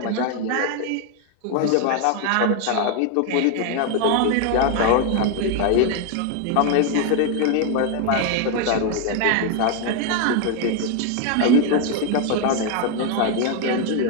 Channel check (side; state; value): both; different; correlation 0.01